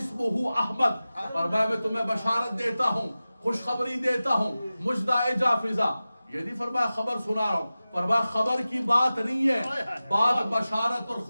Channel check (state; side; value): inverted; both; correlation -0.96